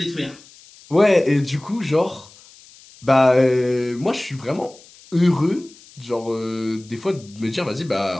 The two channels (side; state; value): left; noise; hiss, 24 dB below the sound